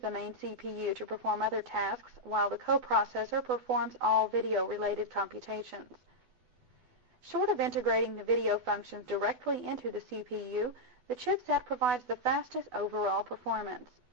main CPU to perform other tasks, while the coprocessor performs all video-related computations. Short of integrating the video functions directly into the CPU, the chipset provides the fastest overall performance.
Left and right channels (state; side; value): late; left; 12 ms